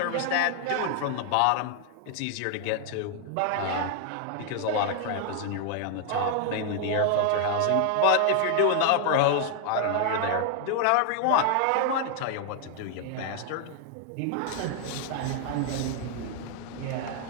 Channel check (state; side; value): different; both; correlation 0.00